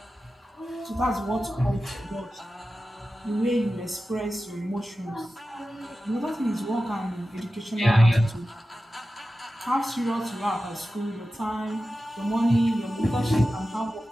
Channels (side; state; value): both; normal; correlation 0.94